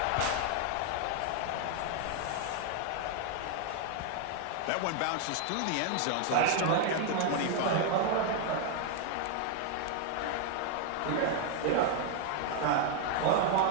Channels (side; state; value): both; different; correlation 0.00